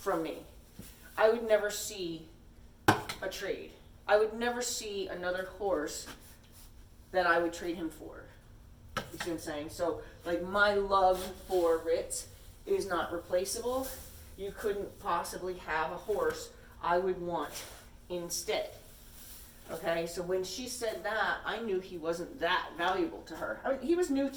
me, I would never see a trade. I would never see another horse that I would trade him for. You see what I'm saying? So, like, my love for Ritz is not replaceable. You couldn't possibly have a horse I would want instead. Okay, so when she said that, I knew he wasn't that valuable to her. I mean, he was new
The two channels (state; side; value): identical; both; correlation 1.00